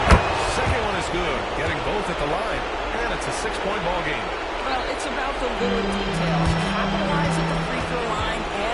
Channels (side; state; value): both; identical; correlation 1.00